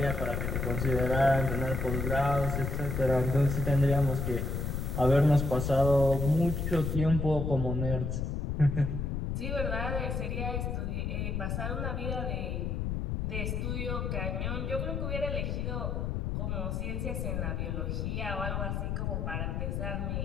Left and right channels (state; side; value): noise; left; rumble, 1 dB below the sound